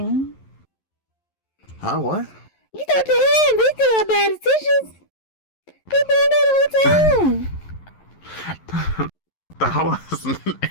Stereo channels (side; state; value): right; late; 11 ms